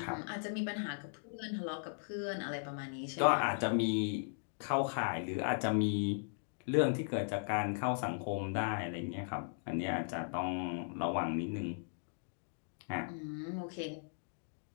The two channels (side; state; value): right; silent; digital silence